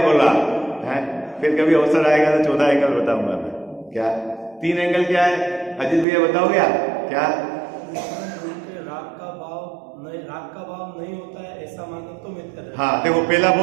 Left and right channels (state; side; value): drops out; left; at 6.1 s